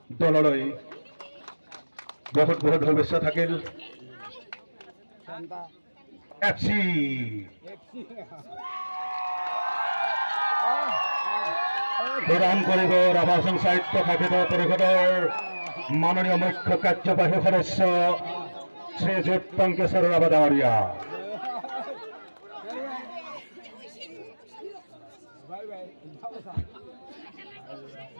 দললৈ বহুত বহুত শুভেচ্ছা থাকিল এফচি প্ৰদান কৰিব ৰাভা হাছন সাহিত্য শাখিত পৰিষদৰ মাননীয় মুখ্য কাৰ্যবাহী সদস্য শ্ৰীযুত টংকেশ্বৰ ৰাভা ডাঙৰীয়া।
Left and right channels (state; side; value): inverted; both; correlation -1.00